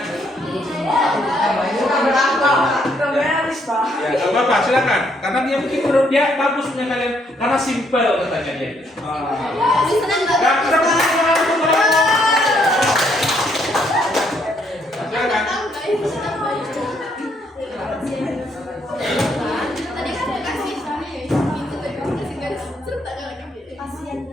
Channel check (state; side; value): normal; both; correlation 0.71